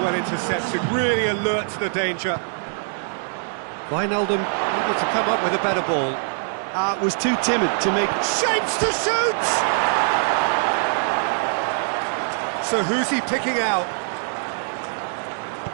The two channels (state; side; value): silent; left; 63 dB below the other